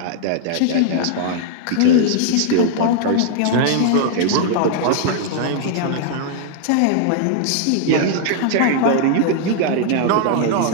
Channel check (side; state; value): both; different; correlation 0.00